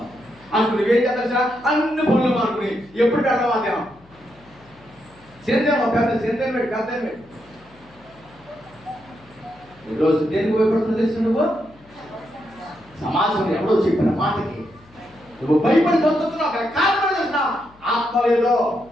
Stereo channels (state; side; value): noise; left; hum, 27 dB below the sound